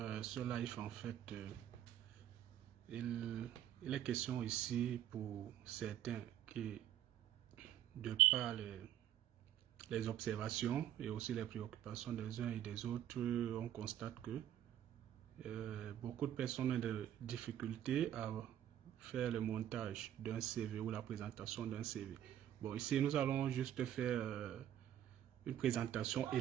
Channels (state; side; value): quieter; left; 11.2 dB